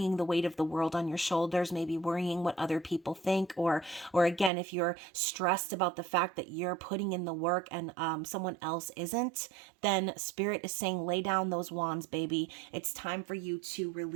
the weight of the world on your shoulders, maybe worrying what other people think, or again, if you're stressed about the fact that you're putting in the work and someone else isn't, then Spirit is saying, lay down those wands, baby. It's time for you to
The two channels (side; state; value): left; drops out; at 4.5 s